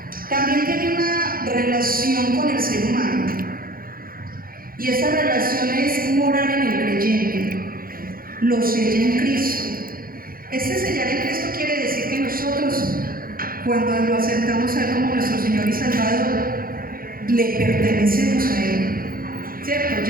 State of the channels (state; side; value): late; left; 0.42 ms